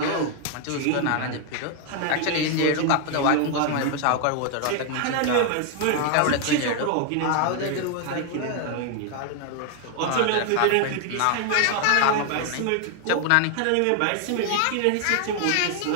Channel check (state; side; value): different; both; correlation 0.00